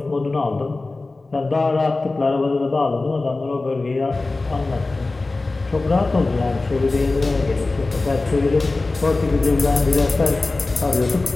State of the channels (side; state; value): right; quieter; 3.3 dB